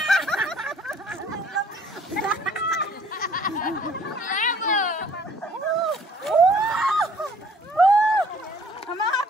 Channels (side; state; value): both; normal; correlation 0.57